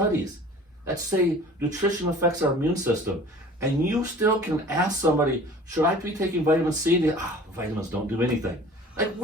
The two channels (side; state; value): both; normal; correlation 0.46